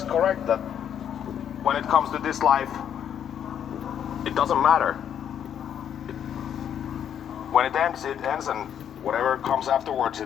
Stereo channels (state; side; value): quieter; right; 9.2 dB